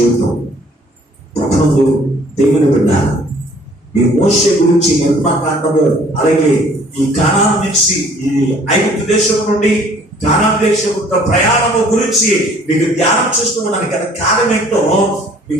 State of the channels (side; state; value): both; normal; correlation 0.56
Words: ప్రపంచంలో దేవుని విన్నారు. ఈ మోషే గురించి నిర్మాకాండము, అలాగే ఈ కానాను నుంచి ఈ ఐగుప్తు దేశం నుండి కానాను దేశం ప్రయాణము గురించి మీకు ధ్యానం చేస్తూ ఉన్నాను కదా. కారణం ఏంటో